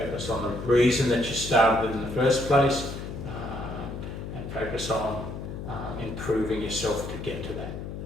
on the reason that you started in the first place, and focus on improving yourself to get to that.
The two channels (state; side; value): noise; left; hum, 8 dB below the sound